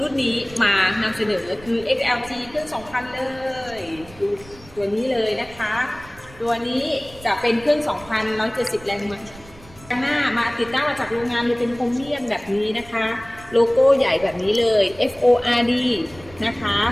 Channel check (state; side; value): noise; right; rumble, 21 dB below the sound